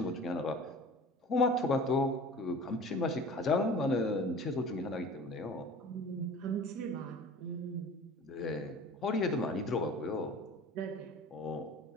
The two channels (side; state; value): both; normal; correlation 0.41